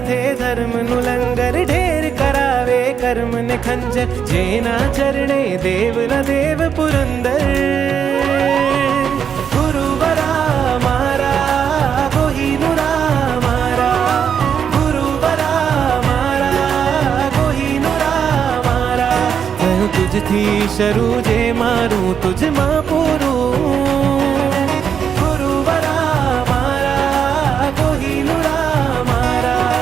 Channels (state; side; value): quieter; left; 7.6 dB